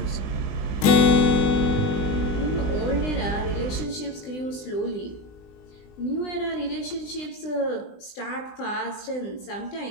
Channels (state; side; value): late; right; 20 ms